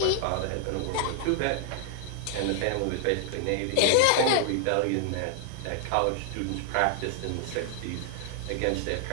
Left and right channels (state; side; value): different; both; correlation 0.00